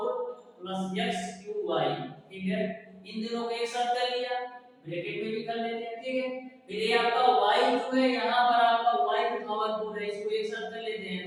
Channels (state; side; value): identical; both; correlation 1.00